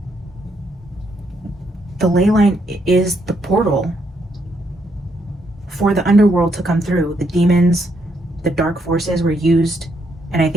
The ley line is the portal for the underworld to come through. The demons, the dark forces were used, and I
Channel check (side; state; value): both; normal; correlation 0.75